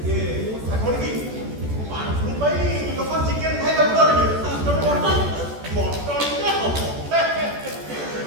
ଇଏ କ'ଣ କି ବାଥରୁମ୍ ପାଇଁ ଲୋକ ଚିକେନ୍ ଖାଇବାକୁ ଡରିବେ ତମେ ମଟନ୍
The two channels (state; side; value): late; left; 14 ms